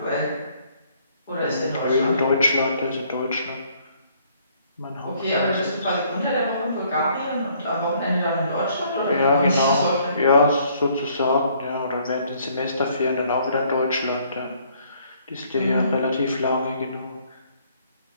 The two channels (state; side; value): inverted; both; correlation -0.63